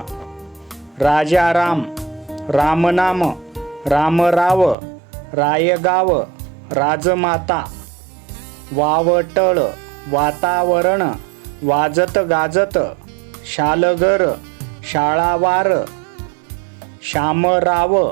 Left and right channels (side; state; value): left; drops out; at 4.8 s